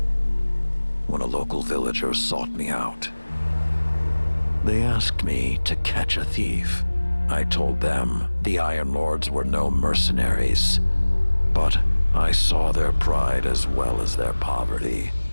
when a local villager sought me out. They asked me to catch a thief. I told them the Iron Lords were no mercenaries, but I saw their pride as well as their poverty.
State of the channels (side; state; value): both; inverted; correlation -1.00